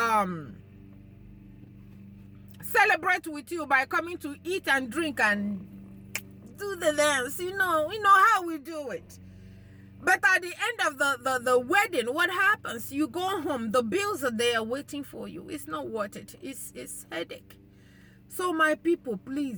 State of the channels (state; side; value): identical; both; correlation 1.00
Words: celebrate with you by coming to eat and drink and do the dance. You know how we do it. But at the end of the wedding, what happens? You go home, the bills are there waiting for you. It's not worth it. It's headache. So my people,